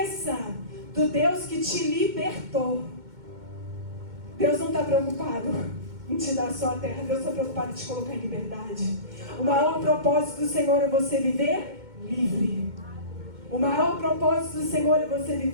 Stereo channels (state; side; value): late; left; 2.2 ms